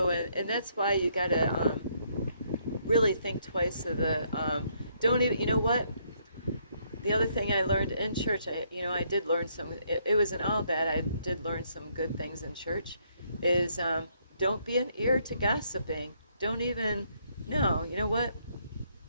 and that's why you gotta really think twice of don't even, you know what? The other thing I learned in church, I did learn some, it wasn't all bad, I did learn some good things in church, is don't be an ear to gossiping. Don't even, no, you know what?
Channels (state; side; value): inverted; both; correlation -0.71